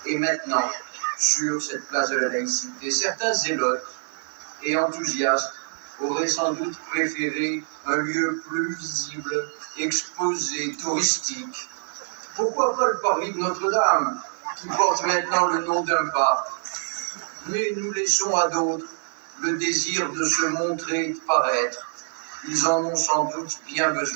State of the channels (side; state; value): left; silent; digital silence